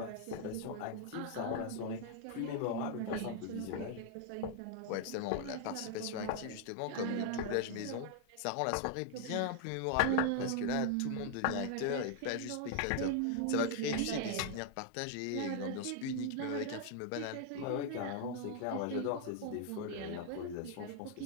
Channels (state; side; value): different; both; correlation 0.00